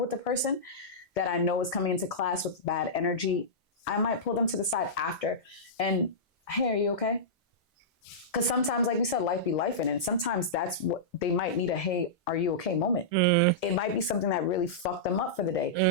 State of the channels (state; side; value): normal; both; correlation -0.15